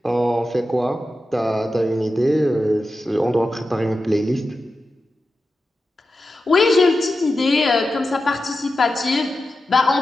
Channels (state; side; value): normal; both; correlation 0.91